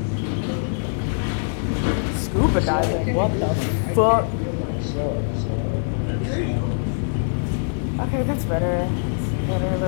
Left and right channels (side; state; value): right; silent; 63 dB below the other